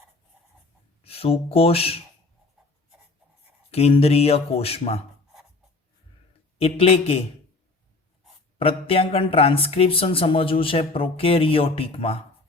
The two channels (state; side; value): quieter; right; 3.4 dB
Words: सुकोष केंद्रीय कोष में। एटले के प्रत्यांकन ट्रांसक्रिप्शन समझवुं छे प्रोकेरियोटिक में,